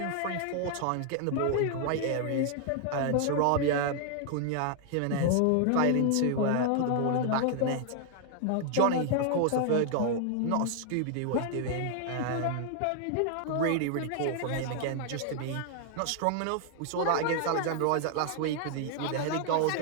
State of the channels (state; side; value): different; both; correlation 0.00